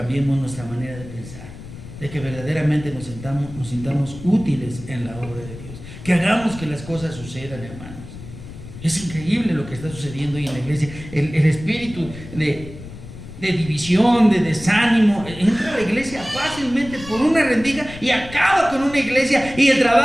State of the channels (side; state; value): left; noise; rumble, 14 dB below the sound